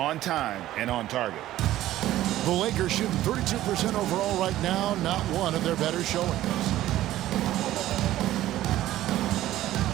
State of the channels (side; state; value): left; quieter; 14.3 dB